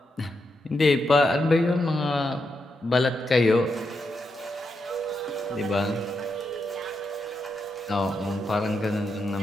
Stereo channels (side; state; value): both; normal; correlation 0.84